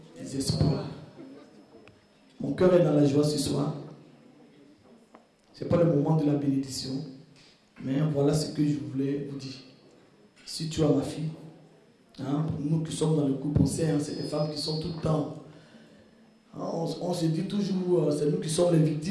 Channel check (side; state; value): both; identical; correlation 1.00